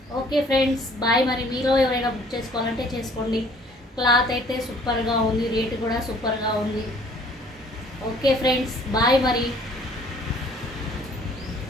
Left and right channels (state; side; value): normal; both; correlation 0.57